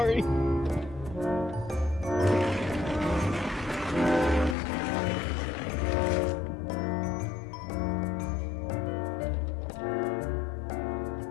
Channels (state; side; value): drops out; right; at 4.5 s